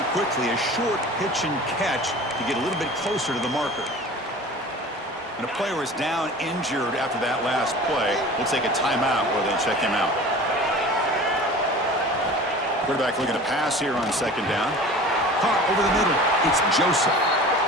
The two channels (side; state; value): both; normal; correlation 0.40